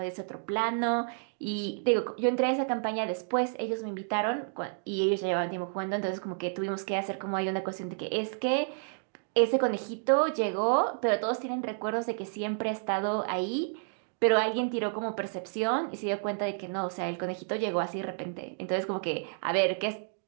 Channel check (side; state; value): left; silent; digital silence